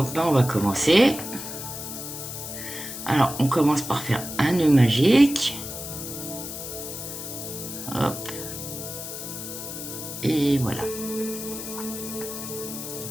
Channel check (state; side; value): noise; left; hiss, 8 dB below the sound